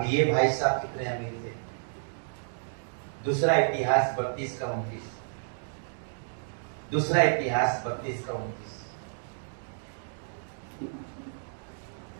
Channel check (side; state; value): left; silent; digital silence